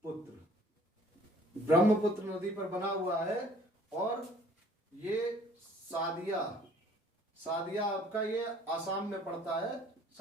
ब्रह्मपुत्र नदी पर बना हुआ है। और ये सादिया आपका ये आसाम में पड़ता है।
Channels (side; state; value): both; normal; correlation 0.55